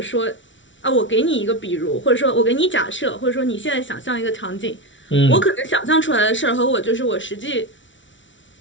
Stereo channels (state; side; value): late; right; 0.55 ms